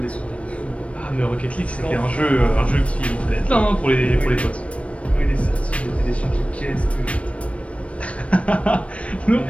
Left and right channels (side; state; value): right; late; 0.063 ms